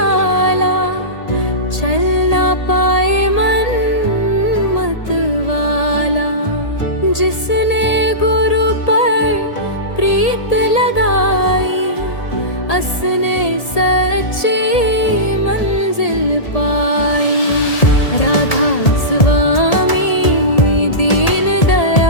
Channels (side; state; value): right; late; 1.8 ms